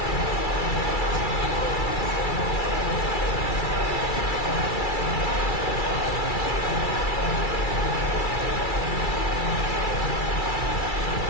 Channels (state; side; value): late; right; 2.3 ms